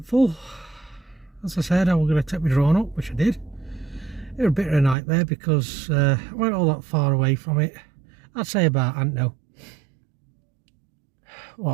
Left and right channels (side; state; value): left; drops out; at 5.0 s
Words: As I said, I was going to take my drone up, which I did. It was a bit of a nightmare because I weren't all that far away from it. I'd say about, I don't know,